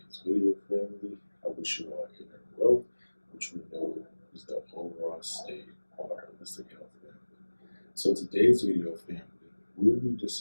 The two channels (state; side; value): inverted; both; correlation -1.00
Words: video, family, I wish you all inner wealth, which we know is the overall state of our holistic health, family. So today's video, family, we'll be